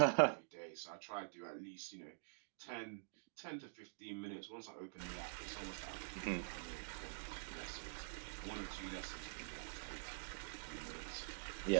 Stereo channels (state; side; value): silent; left; digital silence